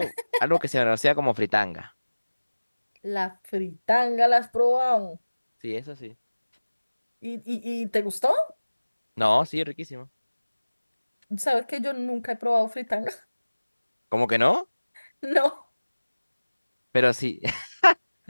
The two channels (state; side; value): inverted; both; correlation -1.00